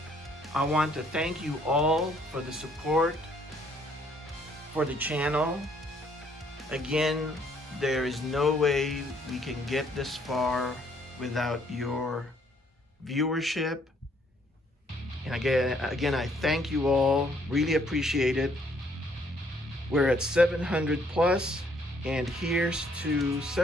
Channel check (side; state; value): both; normal; correlation 0.66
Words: I want to thank you all for the support for the channel. Again, there is no way we can get this far without your viewership. And again, I thank you all. Really appreciate it. We're at 700 plus, and here's to